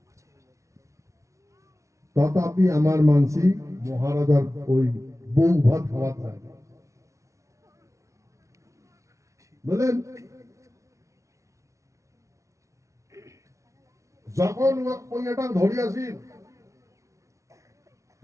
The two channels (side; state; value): left; late; 0.15 ms